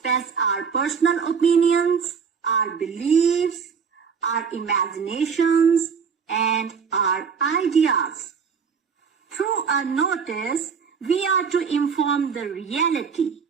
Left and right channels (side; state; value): left; quieter; 6.2 dB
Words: our personal opinions, our beliefs, our imaginations, and our ideas. Through a notice, we are to inform the reality,